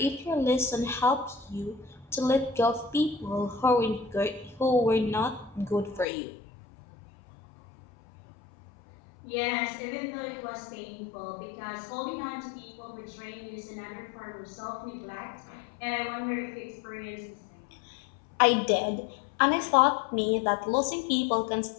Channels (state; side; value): drops out; right; at 6.1 s